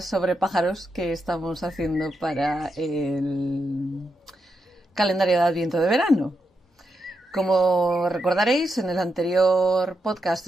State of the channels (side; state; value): both; normal; correlation 0.85